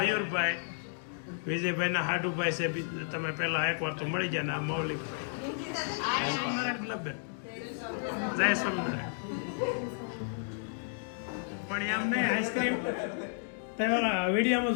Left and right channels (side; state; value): right; silent; digital silence